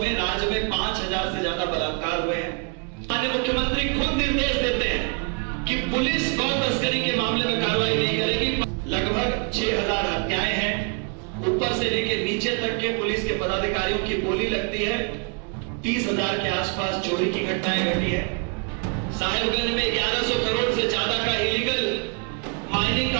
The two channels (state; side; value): quieter; left; 34.8 dB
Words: राज्य में 5000 से ज्यादा बलात्कार हुए हैं। माननीय मुख्यमंत्री खुद निर्देश देते हैं कि पुलिस गौ तस्करी के मामले में कार्रवाई नहीं करेगी। लगभग 6000 हत्याएं हैं। ऊपर से लेकर नीचे तक के पुलिस के पदाधिकारियों की बोली लगती है। 30,000 के आसपास चोरी की घटनाएं घटी है। साहेबगंज में 1100 करोड़ से ज्यादा का इलीगल माइनिंग